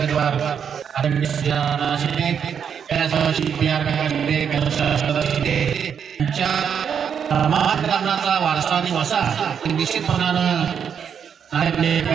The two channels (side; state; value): left; quieter; 7.6 dB